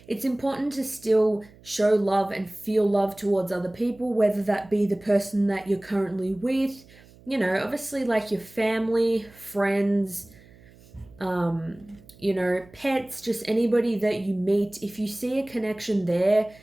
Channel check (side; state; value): right; noise; hum, 25 dB below the sound